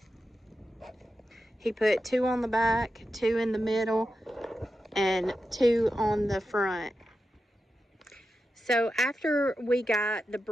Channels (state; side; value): normal; both; correlation 0.90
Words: He put 2 on the back, 2 in the middle, and 2 on the front. So after we got the